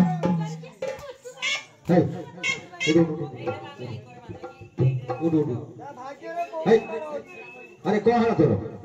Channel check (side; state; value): both; identical; correlation 1.00